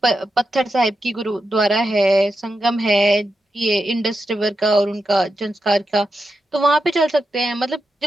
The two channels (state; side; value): normal; both; correlation 0.88